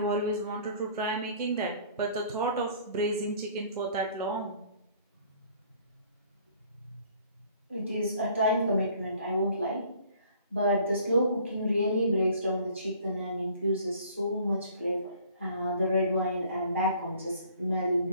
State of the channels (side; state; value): both; inverted; correlation -0.55